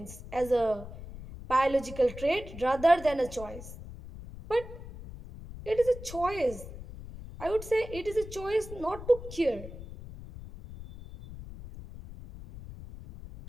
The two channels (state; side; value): noise; left; rumble, 13 dB below the sound